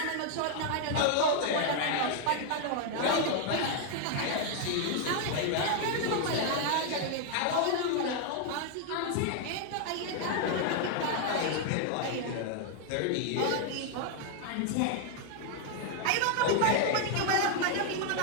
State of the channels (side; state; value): both; different; correlation 0.00